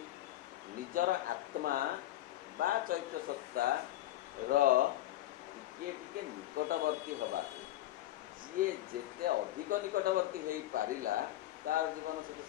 ନିଜର ଆତ୍ମା ବା ଚୈତ୍ୟ ସତ୍ତାର ଟିକେ ଟିକେ ନିକଟବର୍ତ୍ତୀ ହେବାକୁ। ଯିଏ ଯେତେ ଅଧିକ ନିକଟବର୍ତ୍ତୀ ହେଇପାରିଲା, ତାର ଜୀବନ ସେତେ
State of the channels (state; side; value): quieter; right; 14.9 dB